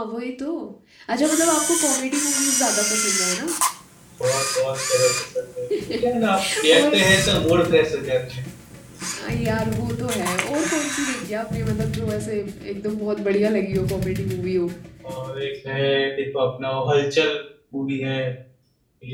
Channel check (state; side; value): identical; both; correlation 1.00